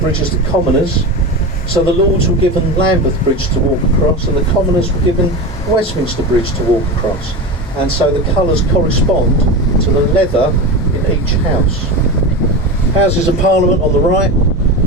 as the Commoners. So the Lords were given Lambeth Bridge to walk across, and the Commoners were given Westminster Bridge to walk across. And so the colours correspond to the leather in each house. Houses of Parliament on the right,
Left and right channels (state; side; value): normal; both; correlation 0.23